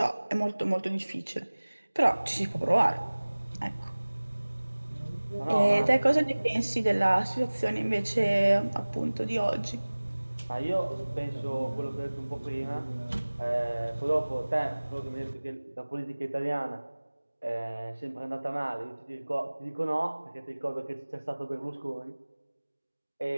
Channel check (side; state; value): both; inverted; correlation -1.00